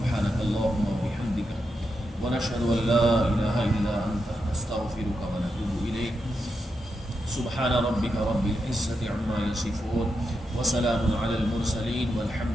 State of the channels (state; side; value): normal; both; correlation 0.85